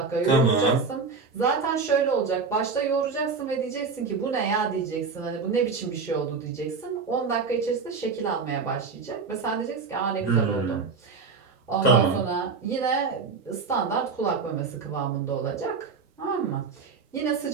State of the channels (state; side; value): quieter; left; 4.9 dB